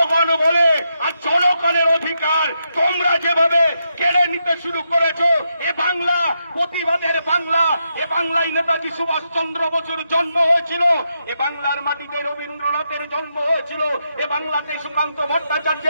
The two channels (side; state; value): both; inverted; correlation -0.83